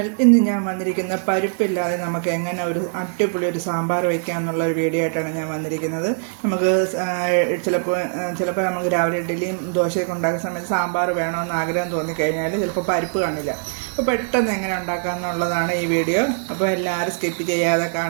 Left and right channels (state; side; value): silent; left; digital silence